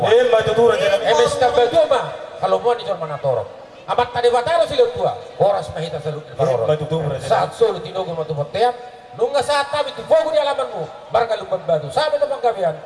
Matutu raja nami. Emes na baguma, kalumuan ni John Manatoro. Amat tadi bataro sila tua, boras mahita salong ni Paroro. Matutu raja. Saat solo tinugo matubot-tiyan, nung nga saat kami, tufogo ni alaman mo, barang lumban batu. Sabi na panggabihan,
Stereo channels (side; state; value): both; identical; correlation 1.00